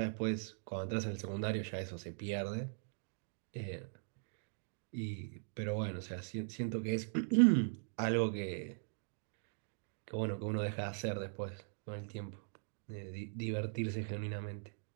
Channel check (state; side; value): silent; left; digital silence